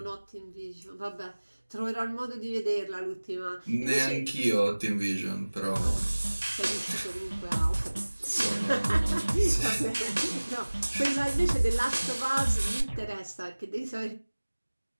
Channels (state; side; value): inverted; both; correlation -1.00